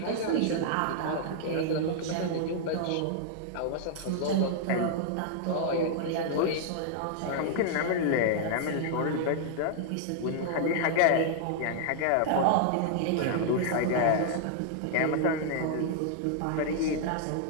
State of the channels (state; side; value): different; both; correlation -0.01